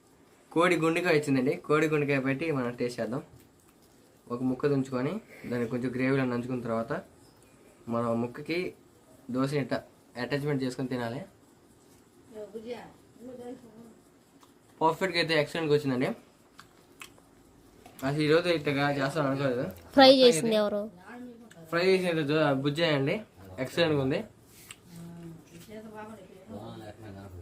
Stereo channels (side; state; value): both; identical; correlation 1.00